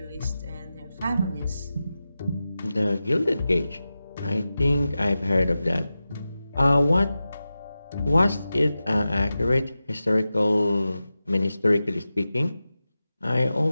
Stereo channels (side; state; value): both; inverted; correlation -0.94